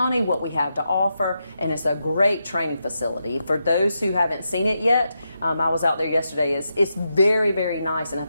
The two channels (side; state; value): both; inverted; correlation -0.85